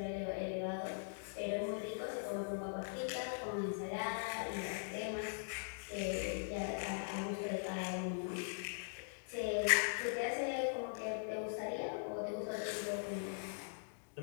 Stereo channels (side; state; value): right; silent; digital silence